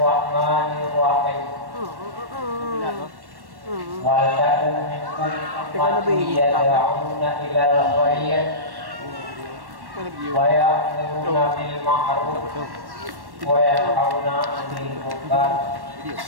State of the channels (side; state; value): left; late; 1.1 ms